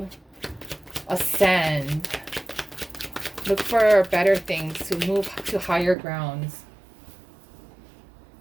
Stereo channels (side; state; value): left; drops out; at 6.0 s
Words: ascend. Look for better things, to move to higher grounds.